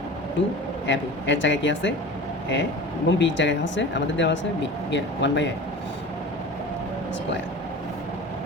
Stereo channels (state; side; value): normal; both; correlation 0.36